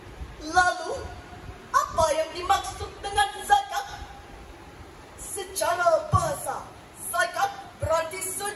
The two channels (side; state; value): both; identical; correlation 1.00